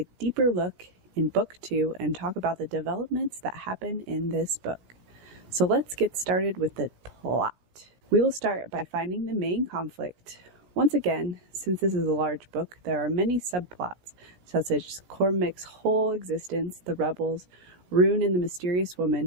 deeper look in Book 2 and talk about the developments that happen in this book. So let's get started with the plot. We will start by finding the main conflict. Once again, since this is a large book, there are many subplots, such as Cormac's whole existence, the rebels, Rune and the mysterious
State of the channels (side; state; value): left; late; 17 ms